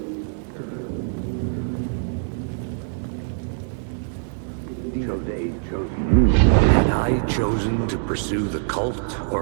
Had I chosen to pursue the cult,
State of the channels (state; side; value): silent; left; digital silence